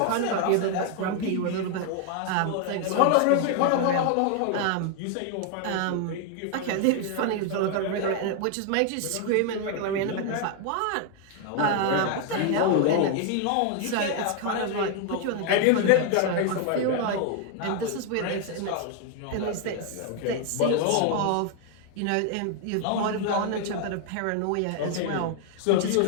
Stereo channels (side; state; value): both; different; correlation 0.00